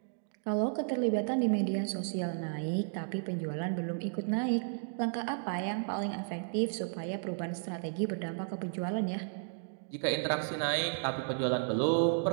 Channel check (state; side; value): silent; left; digital silence